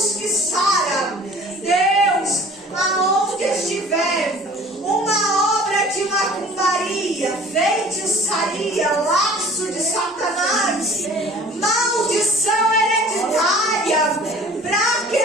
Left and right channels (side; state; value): both; normal; correlation 0.48